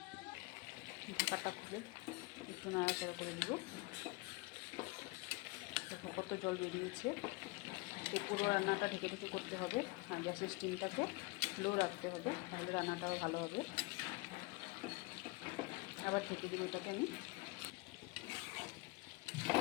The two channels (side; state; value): right; quieter; 24.9 dB